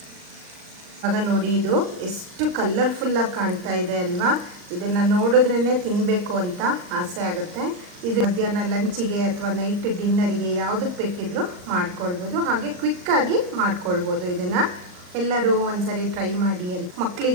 ಆಗ ನೋಡಿ ಇದು ಎಷ್ಟು ಕಲರ್ಫುಲ್ಲಾಗಿ ಕಾಣ್ತಾ ಇದೆ ಅಲ್ವಾ. ಇದನ್ನು ನೋಡಿದ್ರೇ ತಿನ್ನಬೇಕು ಅಂತ ಆಸೆ ಆಗುತ್ತೆ. ಇದು ಮಧ್ಯಾಹ್ನ ಲಂಚಿಗೆ ಅಥವಾ ನೈಟ್ ಡಿನ್ನರಿಗೆ ಯಾವುದಕ್ಕೆ ಬೇಕಿದ್ರೂ ಮಾಡ್ಕೊಳ್ಬೋದು. ಹಾಗೆ ಕ್ವಿಕ್ಕಾಗಿ ಮಾಡ್ಕೊಳ್ಬೋದು. ಇದನ್ನು ಎಲ್ಲರೂ ಒಂದ್ಸರಿ ಟ್ರೈ ಮಾಡಿ.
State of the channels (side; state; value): left; late; 39 ms